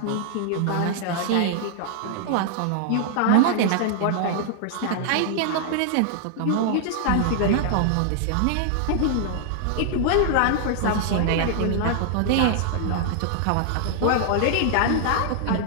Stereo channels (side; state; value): both; different; correlation 0.00